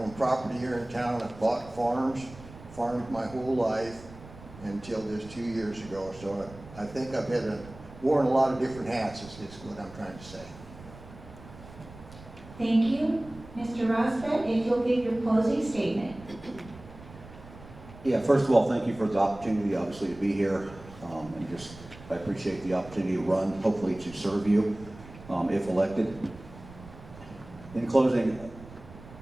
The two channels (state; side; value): noise; right; rumble, 18 dB below the sound